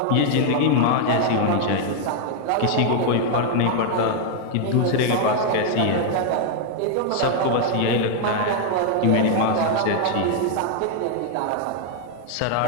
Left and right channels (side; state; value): both; different; correlation 0.00